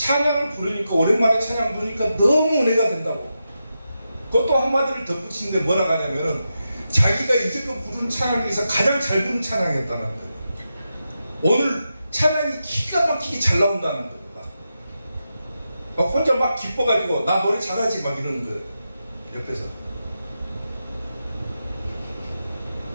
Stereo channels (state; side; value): inverted; both; correlation -0.88